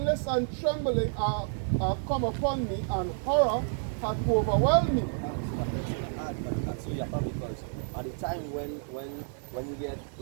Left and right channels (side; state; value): left; silent; digital silence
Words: and trembling are come upon me, and horror hath overwhelmed me. That's so you have because at the time when you get